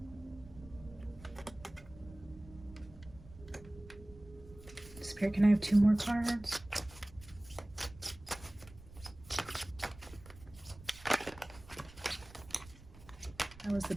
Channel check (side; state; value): right; noise; rumble, 19 dB below the sound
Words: Spirit, can I have 2 more cards? That was the